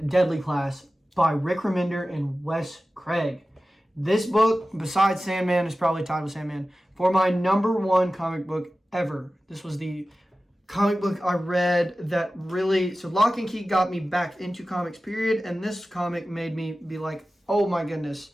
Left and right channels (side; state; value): both; normal; correlation 0.95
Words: Deadly Class by Rick Remender and Wes Craig. This book, besides Sandman, is probably tied with Sandman for my #1 comic book ever. This was the comic book I read that really... So Lock and Key got me back into comics, period. And this comic made me be like, oh my goodness,